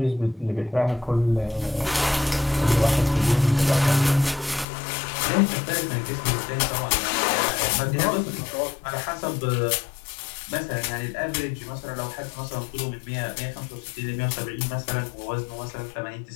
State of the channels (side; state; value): right; drops out; at 4.7 s